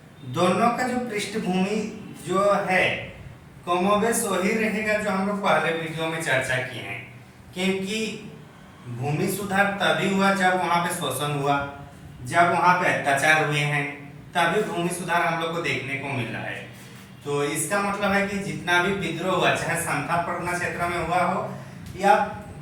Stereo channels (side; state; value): both; identical; correlation 1.00